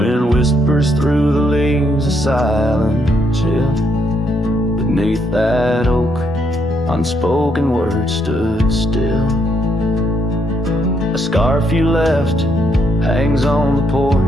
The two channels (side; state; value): both; normal; correlation 0.75